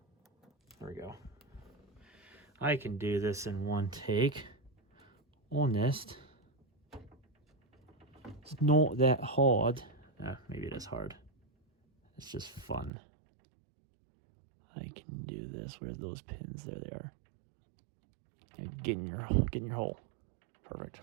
There we go. I can do this in one take. Honest. It's not that hard. Maybe it is hard. It's just fun. I can do this. Where's those pins? There they are. Get in your hole. Perfect.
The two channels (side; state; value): left; drops out; at 12.9 s